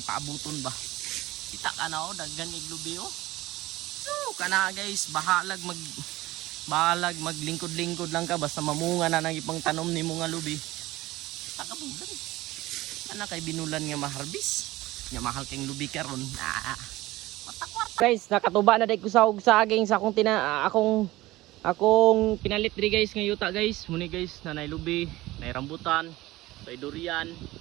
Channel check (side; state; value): left; quieter; 18.1 dB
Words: paabuton ba? Kita ka na daghan iglubi So kana guys, bahalag maglingkod-lingkod lang ka basta mamunga na nang ipang tanom ni mga lubi. Takabugan. Ana kay binulan nga maharbis. Nya mahal kang lubi karon. Matakwar. Guys, nakatuba na day ko sa saging sa akong pinalit diri guys nga yuta guys. Muni guys, nanay lubi, nay rambutan, nay durian,